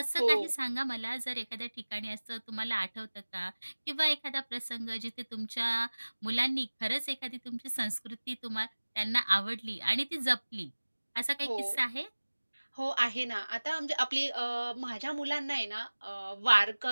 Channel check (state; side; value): inverted; both; correlation -1.00